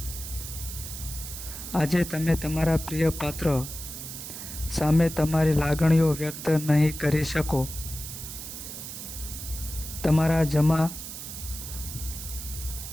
આજે તમે તમારા પ્રિય પાત્ર સામે તમારી લાગણીઓ વ્યક્ત નહીં કરી શકો. તમારા જમા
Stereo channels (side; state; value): right; noise; hiss, 9 dB below the sound